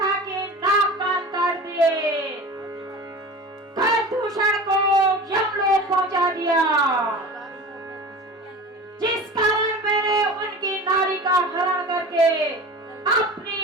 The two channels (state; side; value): normal; both; correlation 0.35